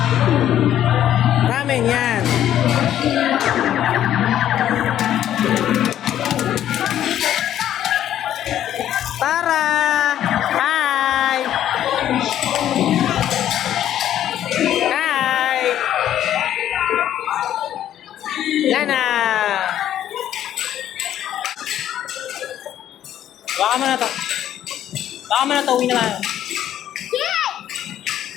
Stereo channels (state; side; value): quieter; right; 11.3 dB